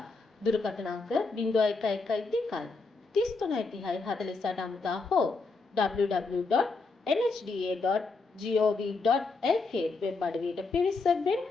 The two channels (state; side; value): quieter; right; 4.0 dB